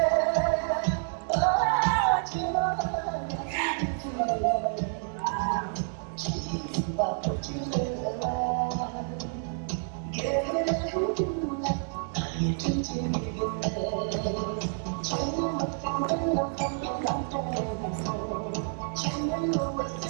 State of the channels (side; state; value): left; silent; 59 dB below the other